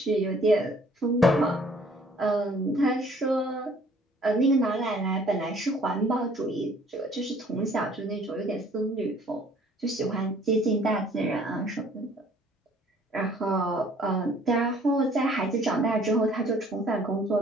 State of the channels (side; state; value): both; normal; correlation 0.57